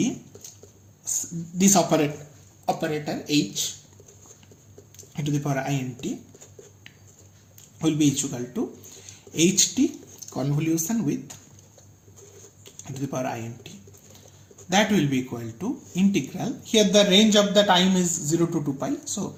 this operator h to the power int will be equal to ht convolution with to the power int. That will be equal to integral. Here the range of the time is 0 to 2 pi. So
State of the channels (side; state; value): both; identical; correlation 1.00